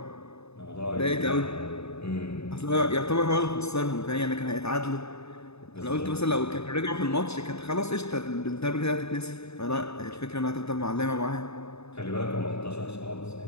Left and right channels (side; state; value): right; late; 0.79 ms